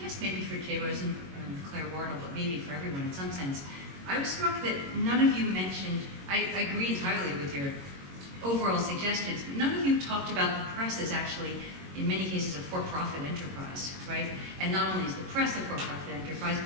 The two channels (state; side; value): late; left; 22 ms